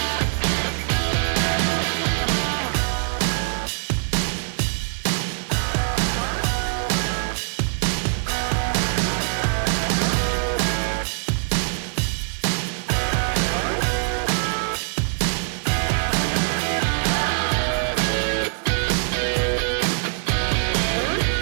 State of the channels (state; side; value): silent; left; digital silence